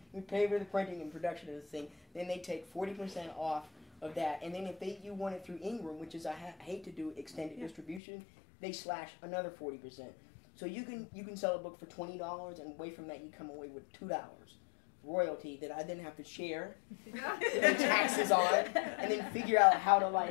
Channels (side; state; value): right; drops out; at 8.0 s